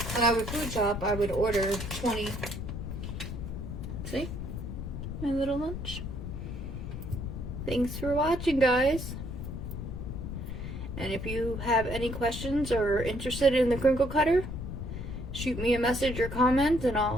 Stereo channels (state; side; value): noise; left; rumble, 6 dB below the sound